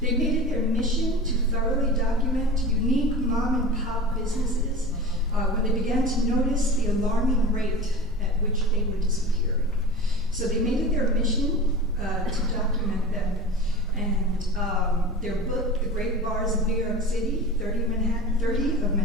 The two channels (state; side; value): normal; both; correlation 0.34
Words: They made it their mission to thoroughly document unique mom and pop businesses when they began to notice the alarming rate at which they were disappearing. So they made it their mission to document them. And their book, The Great Bars of New York City, 30 of